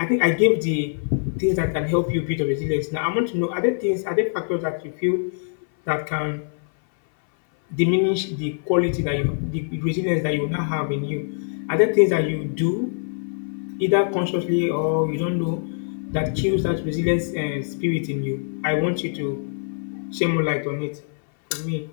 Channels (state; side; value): silent; right; 59 dB below the other